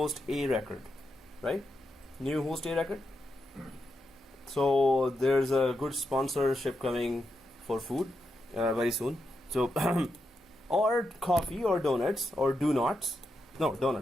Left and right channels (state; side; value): normal; both; correlation 0.85